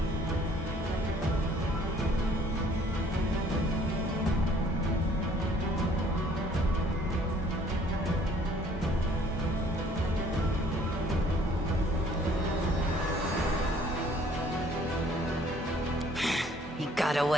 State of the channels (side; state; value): both; normal; correlation 0.58